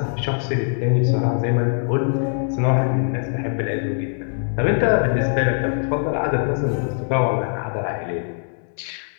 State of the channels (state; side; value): silent; right; digital silence